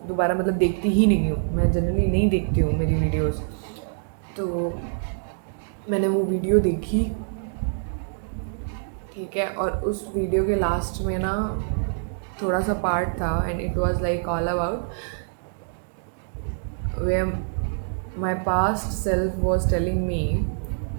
दोबारा मतलब देखती ही नहीं हूँ, मैं जनरली नहीं देखती हूँ मेरी वीडियोस। तो मैंने वो वीडियो देखी, ठीक है। और उस वीडियो के लास्ट में ना थोड़ा सा पार्ट था, and it was like all about where my past self was telling me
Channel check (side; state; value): left; silent; digital silence